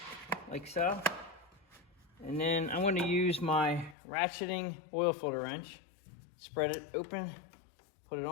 like so. And then I'm going to use my ratcheting oil filter wrench. Spread it open, put it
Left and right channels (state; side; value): drops out; right; at 4.0 s